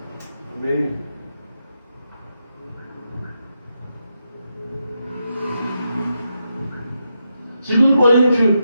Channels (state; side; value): inverted; both; correlation -0.85